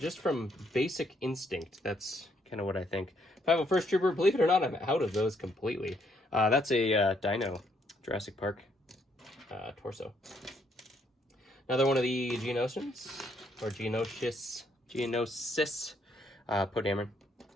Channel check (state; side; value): normal; both; correlation 0.71